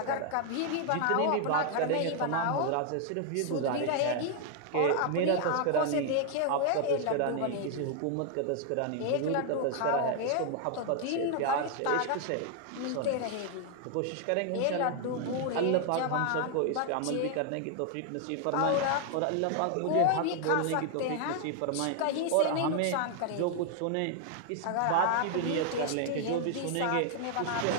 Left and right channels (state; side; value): different; both; correlation 0.00